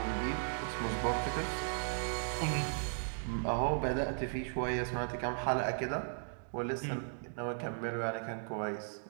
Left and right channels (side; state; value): left; silent; digital silence